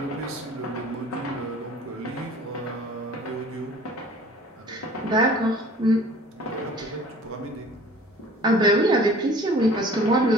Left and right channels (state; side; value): normal; both; correlation 0.48